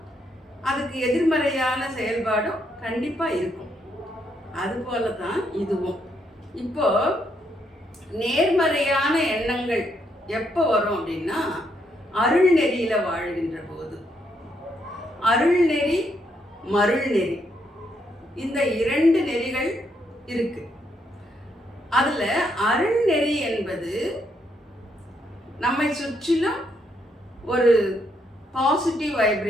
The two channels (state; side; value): normal; both; correlation 0.76